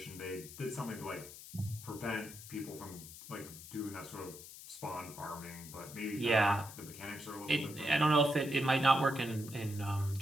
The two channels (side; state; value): left; noise; hiss, 14 dB below the sound